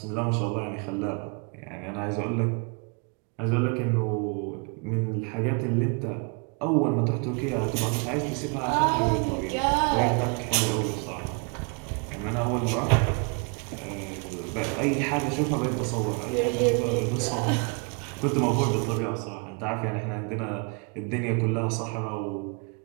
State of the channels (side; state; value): left; quieter; 34.7 dB